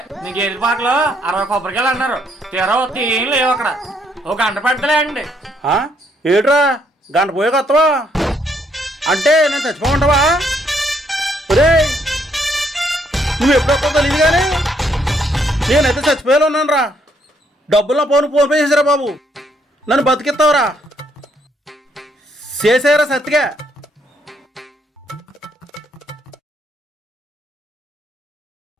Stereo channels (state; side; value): normal; both; correlation 0.71